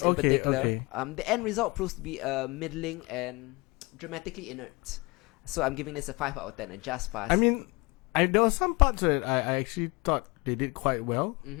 in particular. Okay. The end result proves to be middling and dramatically inert. So I'm giving this a 5 out of 10, a just pass. I mean, there were some parts that I actually thought they did quite well.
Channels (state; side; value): quieter; right; 25.7 dB